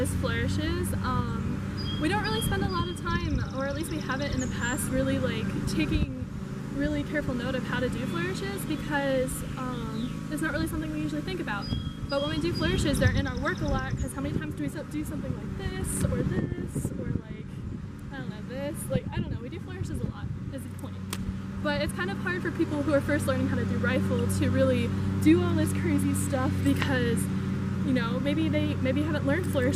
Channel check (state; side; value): identical; both; correlation 1.00